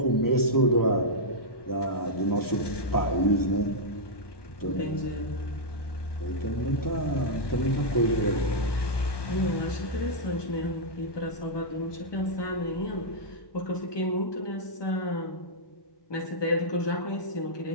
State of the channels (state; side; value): late; right; 1.2 ms